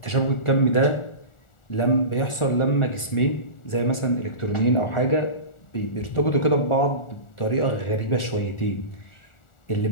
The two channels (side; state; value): right; late; 1.4 ms